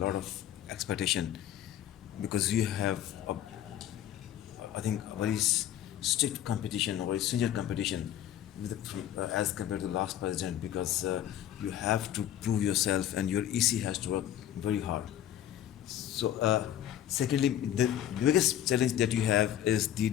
of expectation because you have I think a very strict competition, or very stringent competition with as compared to the last president, because you have to prove yourself and your EC has to work very hard. So secondly, the biggest challenge that you have is the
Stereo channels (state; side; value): quieter; right; 11.3 dB